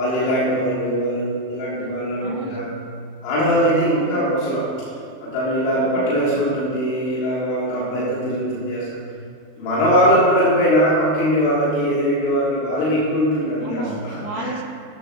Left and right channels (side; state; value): right; late; 39 ms